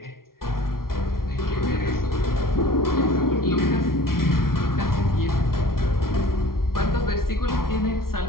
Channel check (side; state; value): right; late; 0.93 ms